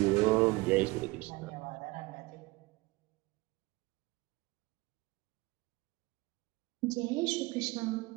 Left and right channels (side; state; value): left; quieter; 22.3 dB